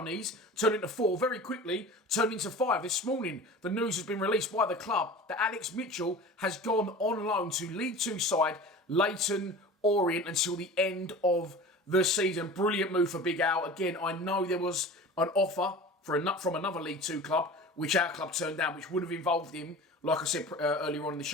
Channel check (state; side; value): normal; both; correlation 0.37